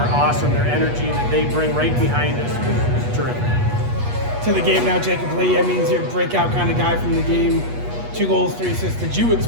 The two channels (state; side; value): late; left; 8.3 ms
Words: awesome. Their energy that they bring right behind us is terrific. To the game now, Jacob Lee. I mean, he's your breakout kind of guy from the game. 2 goals, 3 assists. Did you